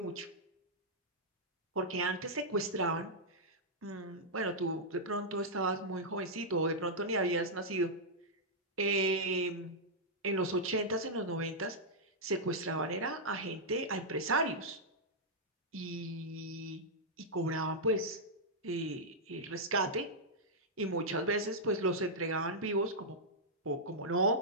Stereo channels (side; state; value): both; normal; correlation -0.08